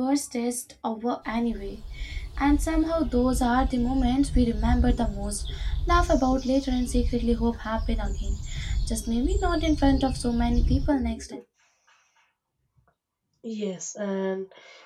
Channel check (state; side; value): identical; both; correlation 1.00